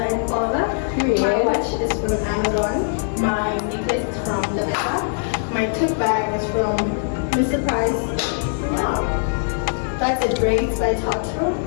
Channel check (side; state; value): right; silent; digital silence